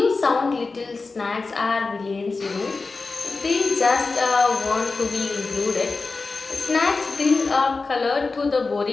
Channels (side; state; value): right; quieter; 4.0 dB